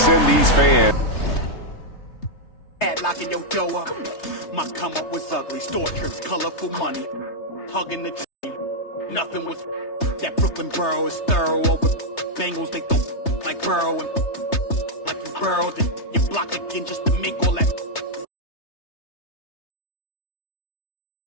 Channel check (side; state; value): right; late; 3.3 ms